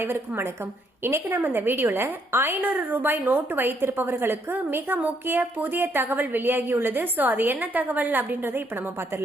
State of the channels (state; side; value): normal; both; correlation 0.72